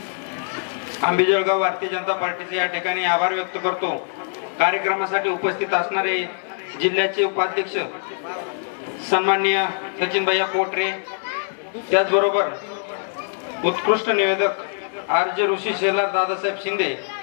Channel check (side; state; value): right; silent; digital silence